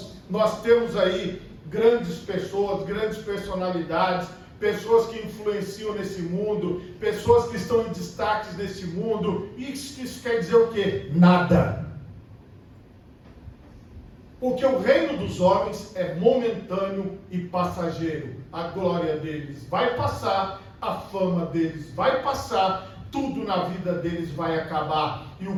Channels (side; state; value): both; identical; correlation 1.00